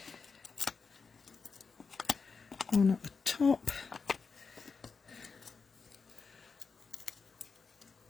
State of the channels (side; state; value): right; quieter; 5.0 dB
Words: One at the top.